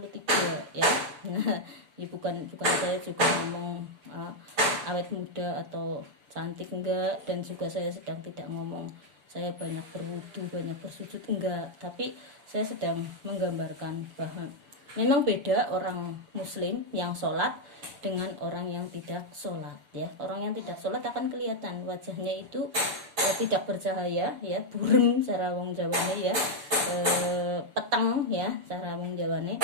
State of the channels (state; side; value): late; left; 6.9 ms